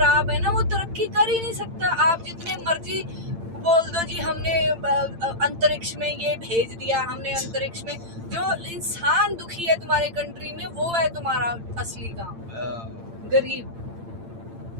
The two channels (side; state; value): left; late; 8.8 ms